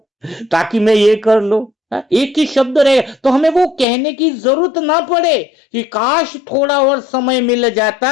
ताकि मैं ये कर लो। हाँ, एक ही शब्द रहेगा तो हमें वो कहने की जरूरत ना पड़े कि काश थोड़ा और समय मिल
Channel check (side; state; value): right; drops out; at 3.9 s